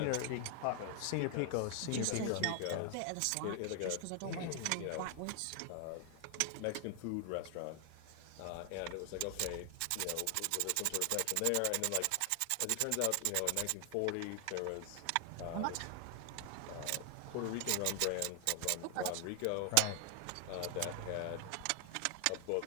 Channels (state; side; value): different; both; correlation 0.00